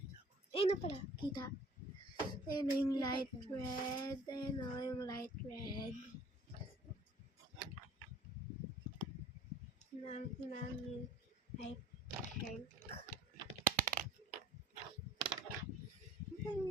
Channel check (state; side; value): normal; both; correlation 0.51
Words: Ayun na pala, kita. Ayun na yung light red. Ayun na yung light red. Yung light pink. Ano